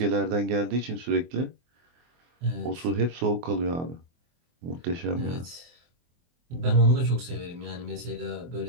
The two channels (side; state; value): left; late; 24 ms